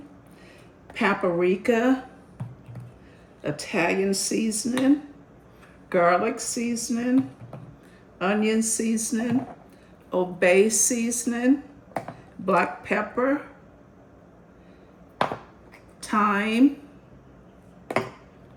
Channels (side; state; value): both; identical; correlation 1.00